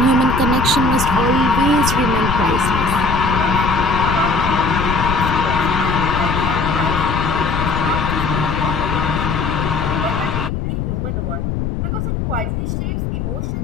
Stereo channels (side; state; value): left; noise; rumble, 2 dB below the sound